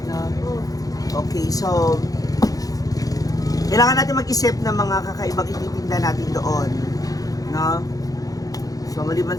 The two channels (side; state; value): right; late; 0.17 ms